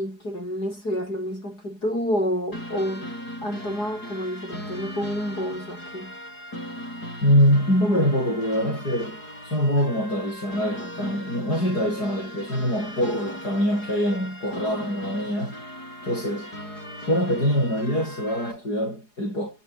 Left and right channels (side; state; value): right; late; 4.8 ms